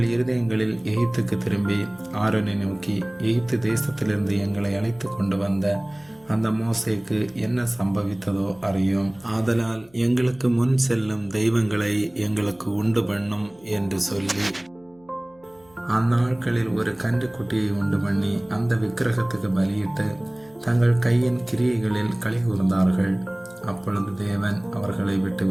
இருதயங்களில் எகிப்துக்கு திரும்பி ஆரோனை நோக்கி, எகிப்து தேசத்திலிருந்து எங்களை அழைத்து கொண்டு வந்த அந்த மோசேக்கு என்ன சம்பவித்ததோ அறியும். ஆதலால் எங்களுக்கு முன் செல்லும் தெய்வங்களை எங்களுக்கு உண்டு பண்ணும் என்று சொல்லி அந்நாட்களில் ஒரு கன்றுக்குட்டியை உண்டு பண்ணி அந்த விக்கிரகத்துக்கு பலியிட்டு தங்கள் கையின் கிரியைகளில் களி கூர்ந்தார்கள். அப்பொழுது தேவன் அவர்களை விட்டு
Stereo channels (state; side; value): noise; left; hum, 30 dB below the sound